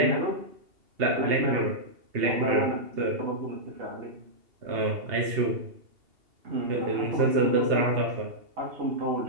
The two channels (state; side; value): late; left; 2.8 ms